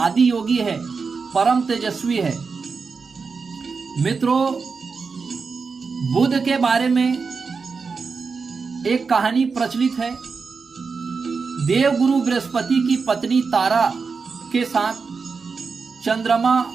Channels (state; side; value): quieter; left; 5.0 dB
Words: योगी है, परम तेजस्वी है मित्रों। बुध के बारे में एक कहानी प्रचलित है। देवगुरु बृहस्पति की पत्नी तारा के साथ चंद्रमा